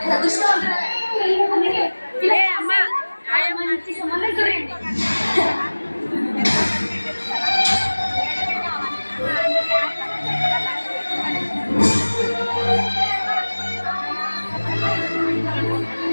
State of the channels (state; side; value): inverted; both; correlation -1.00